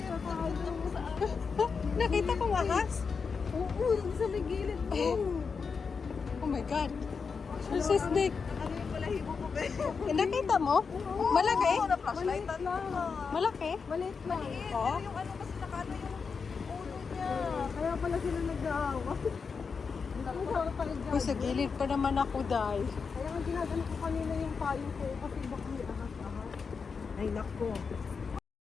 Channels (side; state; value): right; quieter; 5.4 dB